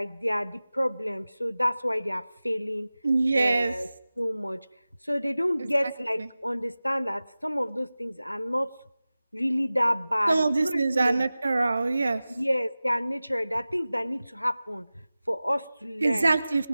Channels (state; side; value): inverted; both; correlation -0.96